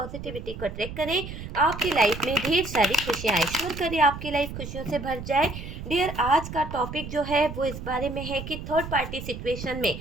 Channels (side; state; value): right; noise; rumble, 9 dB below the sound